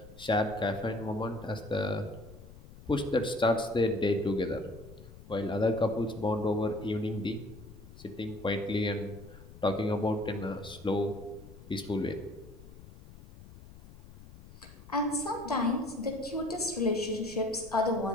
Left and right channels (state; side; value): noise; left; rumble, 18 dB below the sound